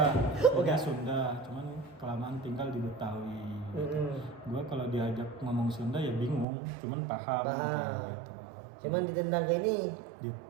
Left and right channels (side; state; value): left; drops out; at 6.5 s